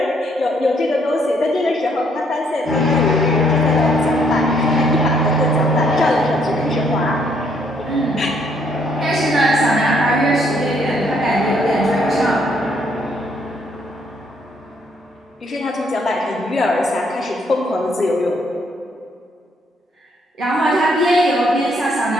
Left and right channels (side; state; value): both; normal; correlation 0.69